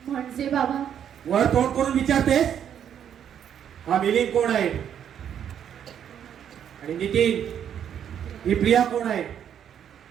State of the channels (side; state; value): left; quieter; 9.1 dB